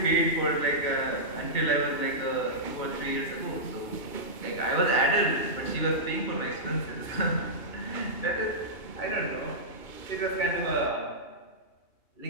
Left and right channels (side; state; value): right; late; 2.8 ms